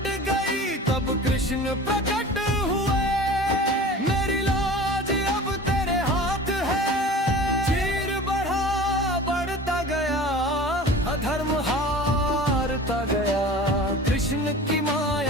गई, तब कृष्ण प्रकट हुए। मेरी लाज अब तेरे हाथ है। चीर बढ़ा बढ़ता गया, अधर्म हारता गया। कृष्ण की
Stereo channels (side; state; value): both; normal; correlation 0.39